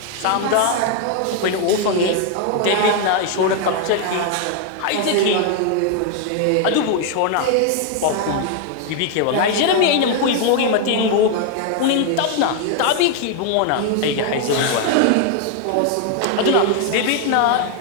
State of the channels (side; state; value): both; different; correlation 0.01